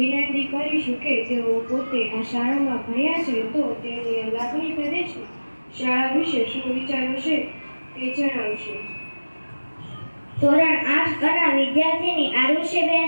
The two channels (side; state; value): both; inverted; correlation -1.00